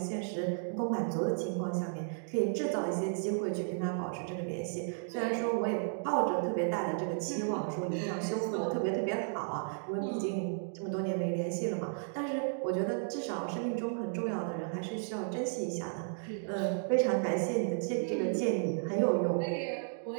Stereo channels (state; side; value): silent; left; digital silence